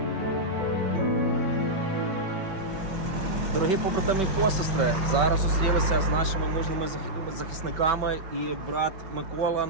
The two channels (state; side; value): late; left; 5.2 ms